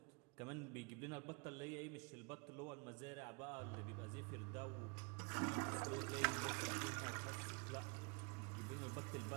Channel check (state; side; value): quieter; left; 32.0 dB